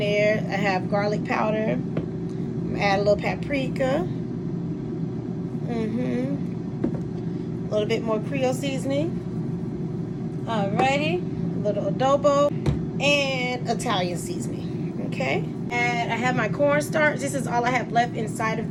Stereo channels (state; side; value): identical; both; correlation 1.00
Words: I have garlic powder. Add a little paprika. A little bit more Creole seasoning. Alrighty, a little adobo and Italian seasoning. Okay, and I have my cornstarch. This is all I have left inside of